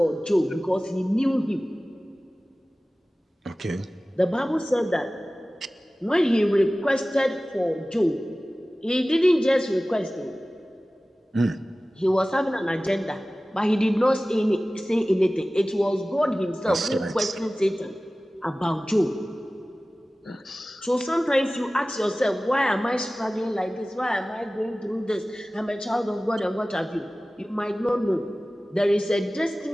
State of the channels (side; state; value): both; normal; correlation 0.97